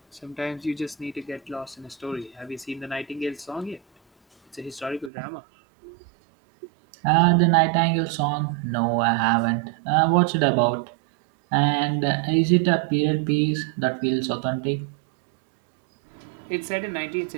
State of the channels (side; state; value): left; drops out; at 5.1 s